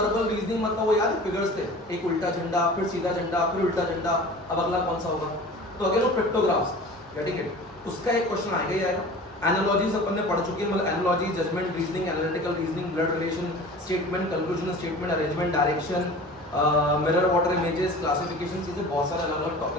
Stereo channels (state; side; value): normal; both; correlation 0.40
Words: reasoning मतलब वो याद फिगर्स थे, एक उल्टा झंडा, फिर सीधा झंडा, फिर उल्टा झंडा। अब अगला कौन सा होगा, तो अगेन वो पिक्टोग्राफ्स, गेटिंग इट, उसका एक क्वेश्चन आएगा ही आएगा। एनालॉजीज अपन ने पढ़ चुके हैं, मतलब analogy, judgement reasoning, analytical reasoning, blood relation, statement, conclusion statement, arrangement, direction, mirror water images, classification, चीजें बहुत सारे अलग अलग